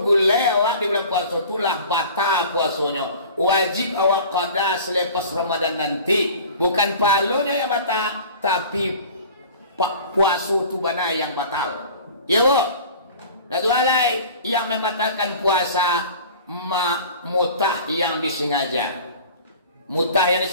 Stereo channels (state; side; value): inverted; both; correlation -0.42